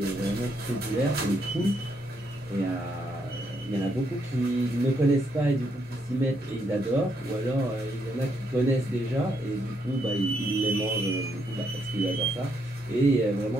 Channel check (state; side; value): noise; left; hum, 26 dB below the sound